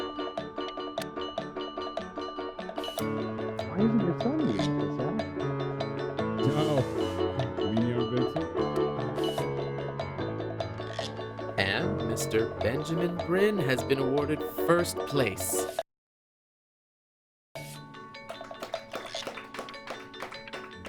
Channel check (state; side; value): identical; both; correlation 1.00